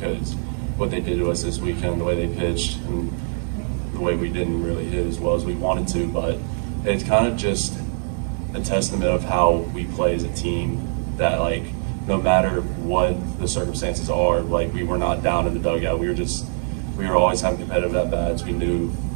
what they did to us this weekend, the way they pitched, and the way we didn't really hit as well as we wanted to, but it's kind of just a testament of how we play as a team, that like no matter what the circumstances are, like we were not down in the dugout. We were always having competitive at bats. We knew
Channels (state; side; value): silent; left; 64 dB below the other